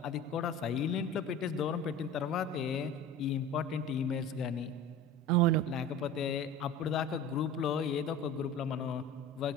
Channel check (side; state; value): both; normal; correlation 0.36